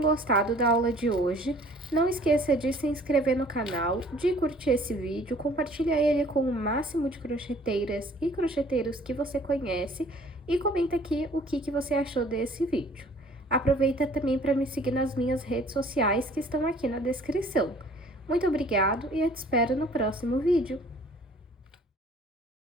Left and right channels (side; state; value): both; normal; correlation 0.54